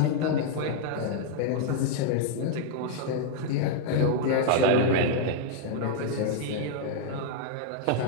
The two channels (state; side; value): different; both; correlation 0.00